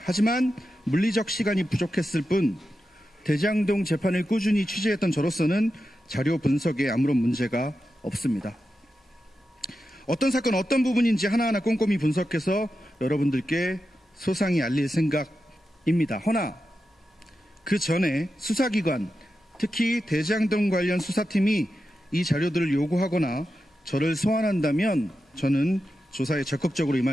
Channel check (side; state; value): both; normal; correlation 0.90